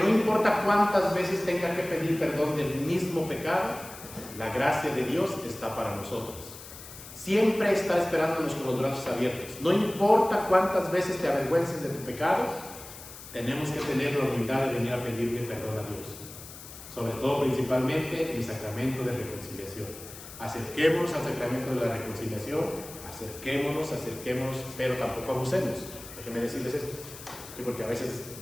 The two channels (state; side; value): noise; left; hiss, 15 dB below the sound